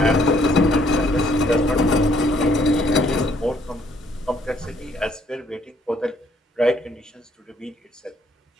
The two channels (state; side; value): normal; both; correlation 0.66